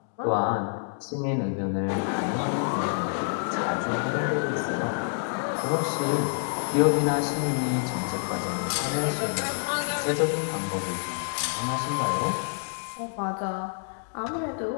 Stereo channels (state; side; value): silent; right; digital silence